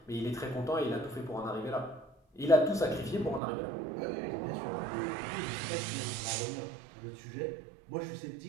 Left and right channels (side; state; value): left; drops out; at 3.4 s